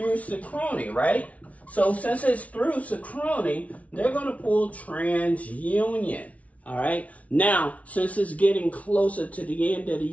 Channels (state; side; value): late; right; 0.067 ms